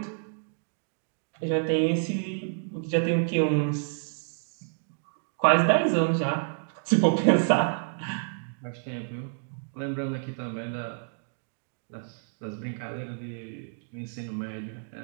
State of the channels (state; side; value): silent; left; digital silence